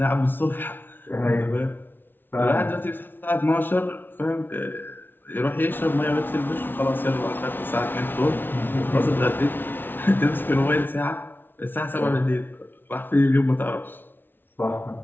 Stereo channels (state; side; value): late; right; 0.098 ms